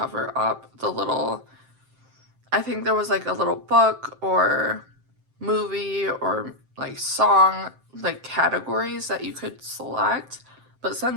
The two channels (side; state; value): left; late; 7.6 ms